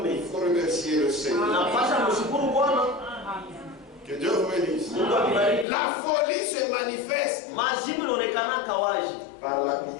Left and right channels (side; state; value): right; drops out; at 5.7 s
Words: il faut remercier le Seigneur. unapasha mshukuru Bwana. Que Dieu vous bénisse. Mungu akubariki. La folie se manifeste Majibu inaonekana kawaji par